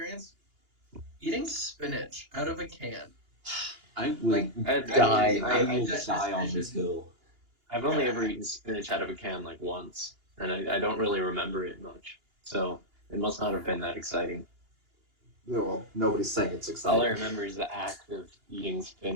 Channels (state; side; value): late; left; 2.8 ms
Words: Eating spinach out of a can. I would Like, die. I- I I will that die on this decision. hill. I've only ever eaten spinach out of a can like once, and I don't really remember it much. So it must not have been that exciting. Well, nobody's saying it's All I exciting. remember is the act of eating